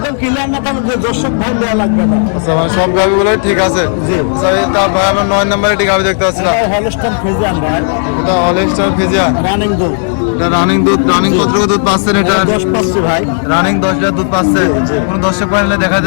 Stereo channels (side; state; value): right; silent; digital silence